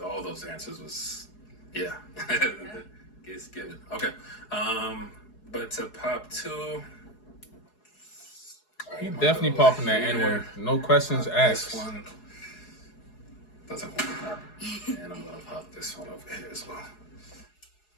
All those answers was, yeah. It's given. Okay. But to pop 2. He definitely popping that N-word. No questions asked. This one doesn't want to pop. And I'm going to pop this one over here as well.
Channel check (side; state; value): right; late; 4.7 ms